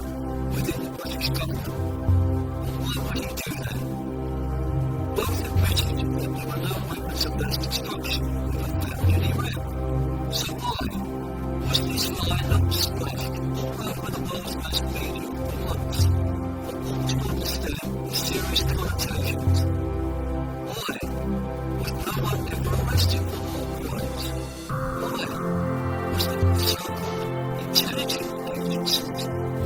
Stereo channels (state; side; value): identical; both; correlation 1.00